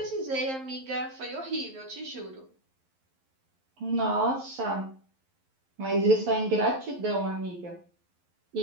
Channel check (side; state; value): left; late; 11 ms